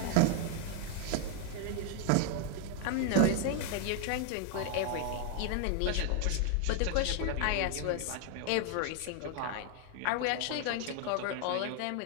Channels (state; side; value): different; both; correlation 0.00